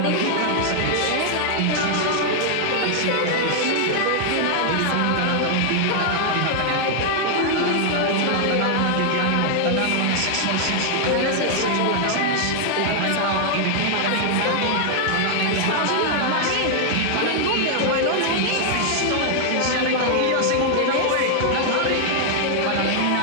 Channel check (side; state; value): both; different; correlation 0.00